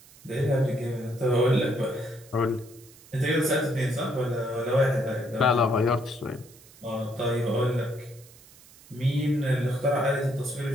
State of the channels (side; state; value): right; noise; hiss, 23 dB below the sound